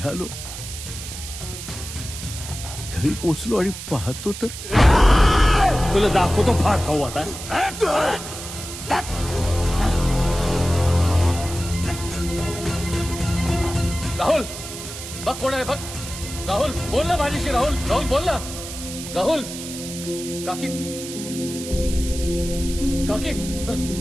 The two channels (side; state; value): right; noise; hiss, 10 dB below the sound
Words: घरी पोचलो आणि पाहतो तर तुला दाखवतो फार खाऊ आता. राहुल बघ कोण आहे बघ. राहुल बोल ना माझ्याशी. राहुल राहुल बोल ना. राहुल काकी काकी